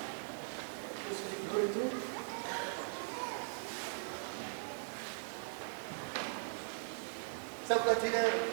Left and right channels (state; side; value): silent; left; 51 dB below the other